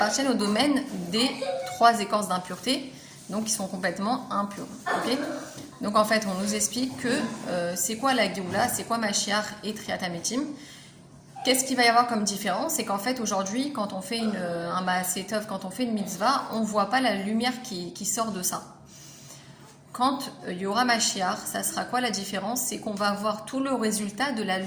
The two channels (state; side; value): identical; both; correlation 1.00